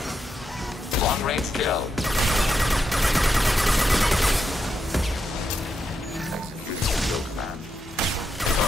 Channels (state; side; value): normal; both; correlation 0.83